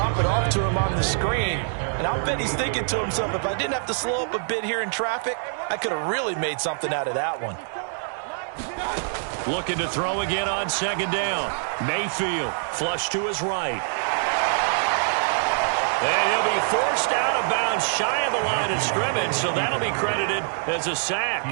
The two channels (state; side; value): silent; left; digital silence